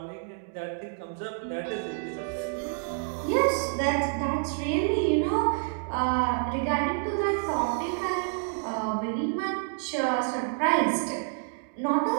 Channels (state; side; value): silent; left; 59 dB below the other